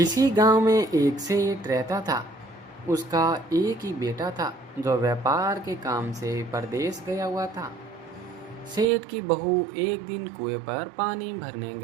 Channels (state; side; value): drops out; left; at 8.8 s